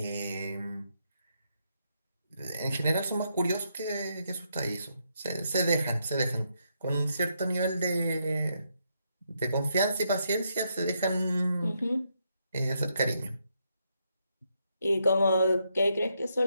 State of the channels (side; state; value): both; inverted; correlation -0.79